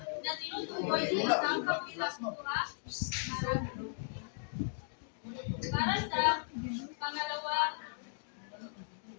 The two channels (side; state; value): right; silent; digital silence